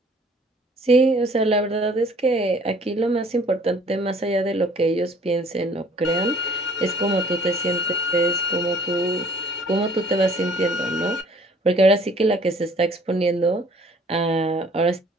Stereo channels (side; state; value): both; normal; correlation 0.55